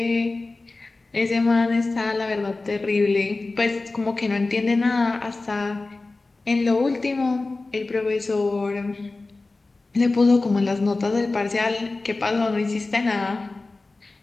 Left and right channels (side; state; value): right; quieter; 3.4 dB